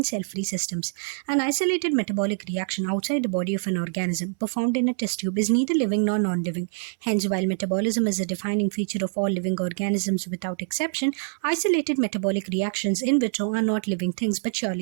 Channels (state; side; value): silent; left; 62 dB below the other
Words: cell-free systems. An isolated metabolic reaction outside the body of an organism performed in a test tube is neither living nor non-living. Hence, while metabolism is a defining feature of all living organisms without exception, isolated metabolic reactions in vitro are not living things but